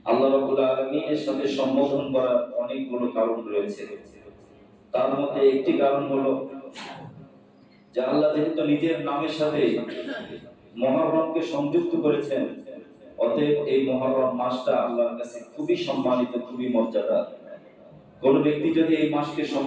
আল্লাহ রাব্বুল আলামিনের সাথে সম্বোধন করার অনেকগুলো কারণ রয়েছে। তার মধ্যে একটি কারণ হলো যে আল্লাহ যেহেতু নিজের নামের সাথে মুহররমকে সংযুক্ত করেছেন, অতএব এই মুহররম মাসটা আল্লাহর কাছে খুবই সম্মানিত, খুবই মর্যাদা। কোন ব্যক্তি যদি এই মাসকে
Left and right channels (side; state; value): both; identical; correlation 1.00